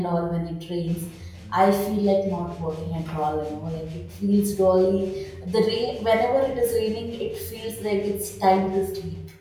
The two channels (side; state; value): both; identical; correlation 1.00